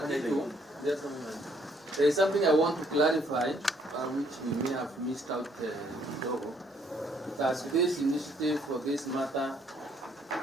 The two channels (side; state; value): both; normal; correlation 0.66